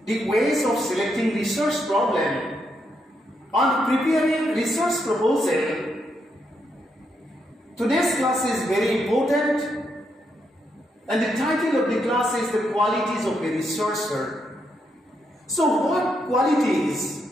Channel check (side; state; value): both; normal; correlation 0.79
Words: of selecting research problem and preparing research proposal, today's class is very important, and the title of the class is the qualities of a researcher. So what